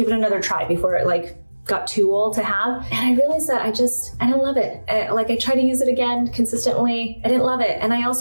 it another try before it got too old to have. And I realized that I don't love it. I tried to use it again consistently. I didn't love it. And I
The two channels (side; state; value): both; inverted; correlation -1.00